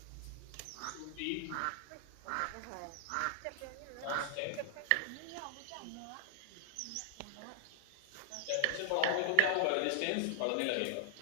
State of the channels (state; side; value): different; both; correlation 0.00